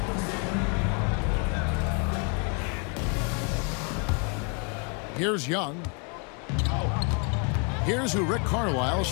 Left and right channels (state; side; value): quieter; right; 35.7 dB